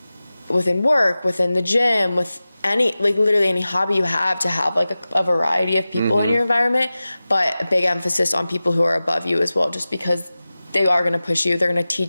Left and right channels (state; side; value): inverted; both; correlation -0.96